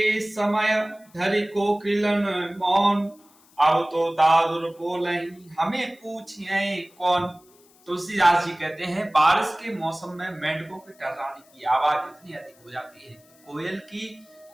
समय धरि कोकिलन मौन। अब तो दादुर बोलहीं हमें पूछिए कौन। तुलसीदास जी कहते हैं बारिश के मौसम में मेंढकों के टर्राने की आवाज इतनी अधिक हो जाती है, कोयल की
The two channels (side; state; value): left; noise; hiss, 29 dB below the sound